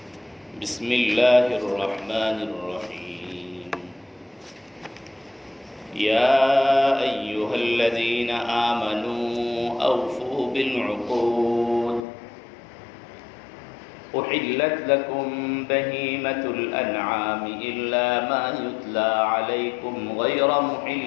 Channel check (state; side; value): drops out; right; at 12.1 s